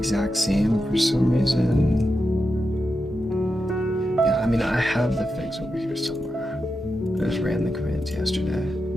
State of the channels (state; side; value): normal; both; correlation 0.88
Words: same for some reason. Yeah, I mean, I have the fix over here somewhere. I just ran the commands yesterday.